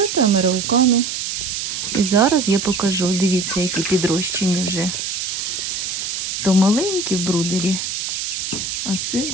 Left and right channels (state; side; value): noise; right; hiss, 3 dB below the sound